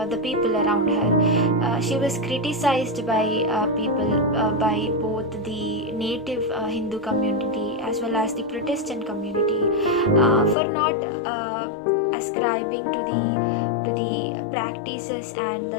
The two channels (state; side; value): drops out; right; at 10.6 s